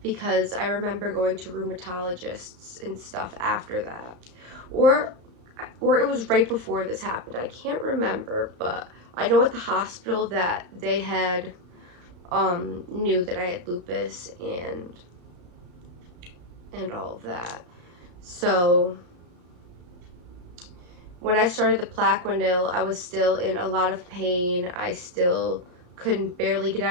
because I remember going to rheumatologists and stuff after that. Or it was right before this happened. I can't remember, but I know at the hospital that they had knew that I had lupus and all of that. So when I started the Plaquenil, I was still in a lot of pain. I still couldn't barely get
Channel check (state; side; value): late; left; 34 ms